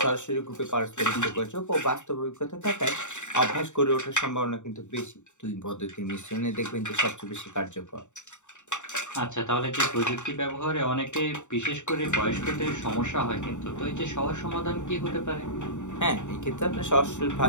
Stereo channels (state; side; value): late; right; 0.84 ms